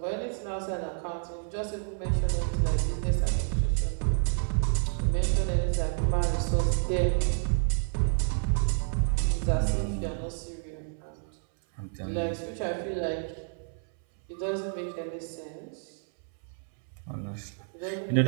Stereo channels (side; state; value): left; silent; 58 dB below the other